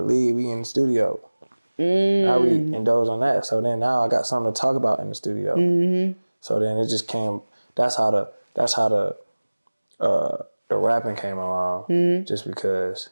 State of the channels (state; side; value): inverted; both; correlation -1.00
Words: league, we in the studio. Now we indulge on that. So then now I got something to talk about in the studio. So then it just came. That's how the rapping came along. Just because